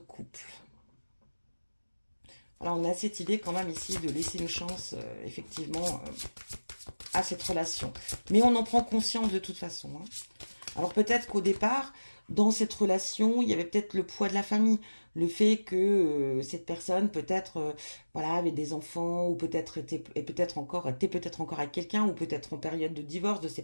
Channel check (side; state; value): both; inverted; correlation -1.00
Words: Alors, on a cette idée quand même ici de laisser une chance, effectivement, à cette relation. Mais on en prend conscience de toute façon. Hein. Alors, peut-être qu'au départ, dans cette relation, il y avait peut-être le poids de la famille. Le fait que cette personne, peut-être, voilà, avait des enfants, ou peut-être était peut-être encore avec quelqu'un, ou peut-être en période de divorce, de